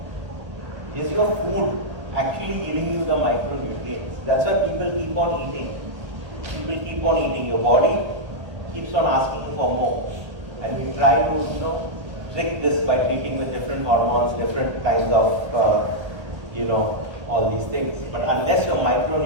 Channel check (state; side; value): late; left; 1.3 ms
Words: is your food actually giving you the micronutrients? That's why people keep on eating. People keep on eating. Your body keeps on asking for more. And we try to, trick this by treating with different hormones, different kinds of, all these things. But unless your